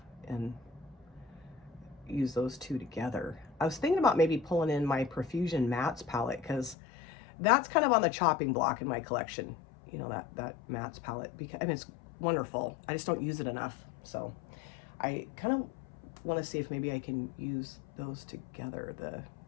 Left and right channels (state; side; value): drops out; right; at 6.8 s